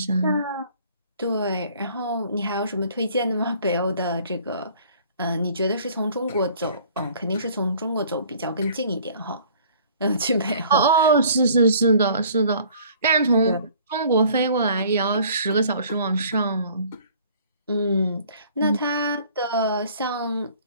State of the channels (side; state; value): both; inverted; correlation -0.54